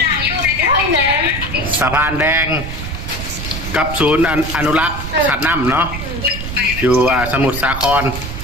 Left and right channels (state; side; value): noise; right; rumble, 7 dB below the sound